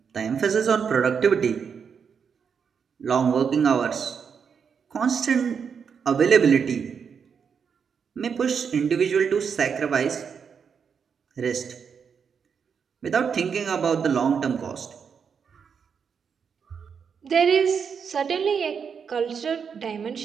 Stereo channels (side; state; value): left; quieter; 6.6 dB